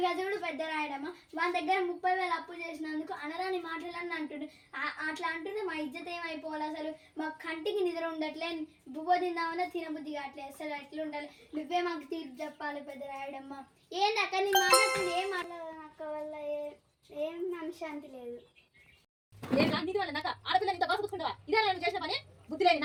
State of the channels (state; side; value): identical; both; correlation 1.00